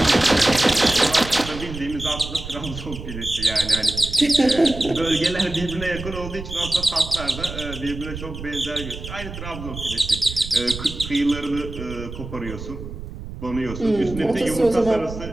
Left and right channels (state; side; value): noise; right; rumble, 10 dB below the sound